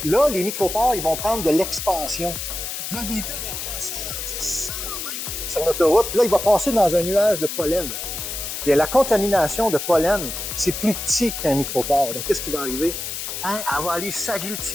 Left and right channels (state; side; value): noise; left; hiss, 5 dB below the sound